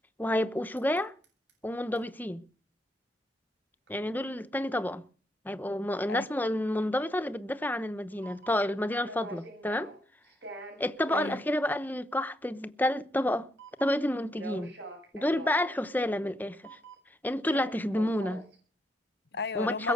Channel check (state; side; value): normal; both; correlation 0.78